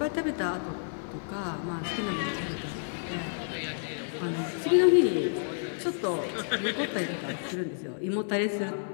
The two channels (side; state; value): right; silent; digital silence